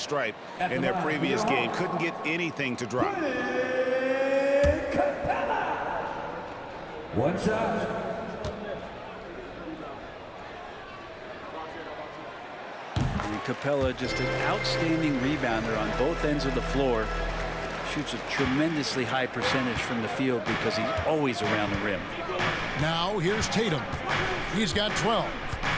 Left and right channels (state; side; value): identical; both; correlation 1.00